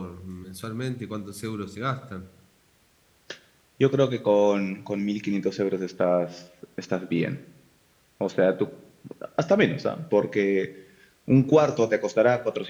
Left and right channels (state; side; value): identical; both; correlation 1.00